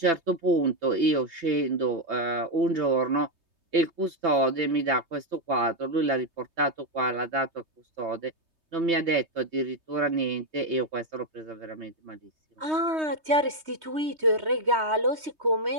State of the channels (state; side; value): late; left; 3.2 ms